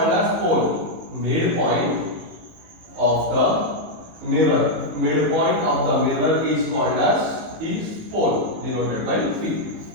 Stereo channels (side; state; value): left; late; 18 ms